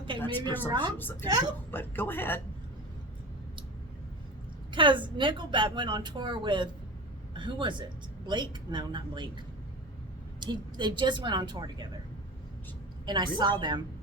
That's maybe I'm wrong. presumptuous of you, but go ahead. Because Nickelback went on tour with, who was it? Blake? No, not Blake. They just went on tour together, and I saw them.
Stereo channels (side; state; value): both; normal; correlation 0.30